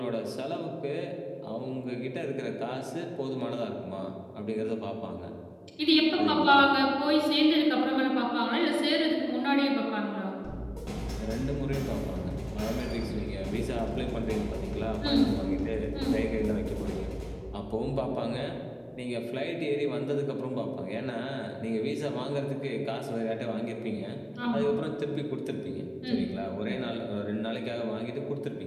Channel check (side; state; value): both; identical; correlation 1.00